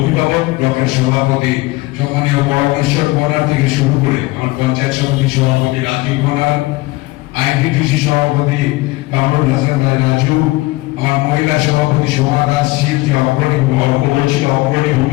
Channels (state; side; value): quieter; right; 21.2 dB